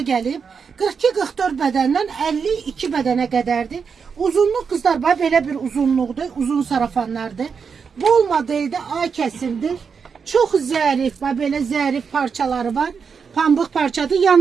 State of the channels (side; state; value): left; quieter; 6.0 dB